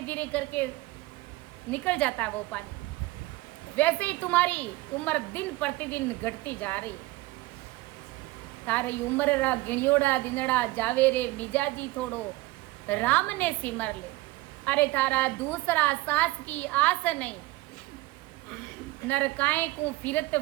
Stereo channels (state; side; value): quieter; left; 19.9 dB